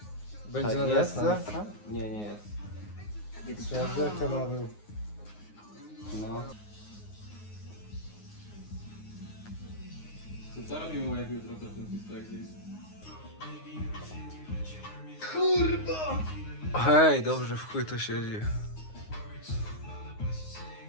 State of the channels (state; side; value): late; right; 9.6 ms